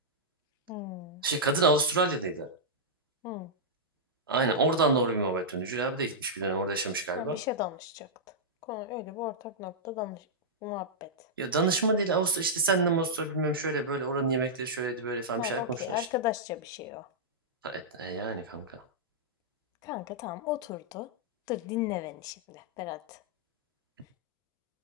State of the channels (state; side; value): normal; both; correlation -0.09